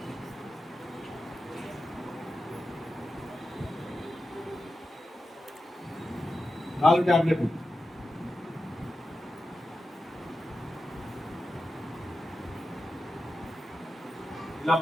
నాలుగు టాబ్లెట్లు ఇలా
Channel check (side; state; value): both; normal; correlation 0.90